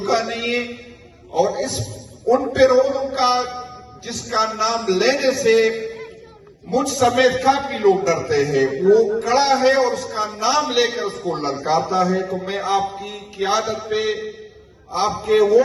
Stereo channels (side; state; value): both; identical; correlation 1.00